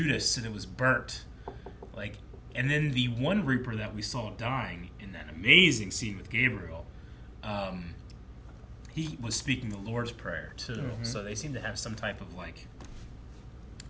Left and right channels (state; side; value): identical; both; correlation 1.00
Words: and it was burnt. Like, and then the one Reaper that we saw dying in that amazing scene with Gabriel, he was speaking the Lord's Prayer too. So they seem to have some type of like